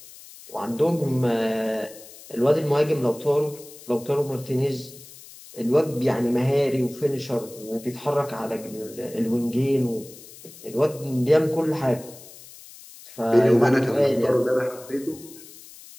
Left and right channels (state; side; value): noise; left; hiss, 19 dB below the sound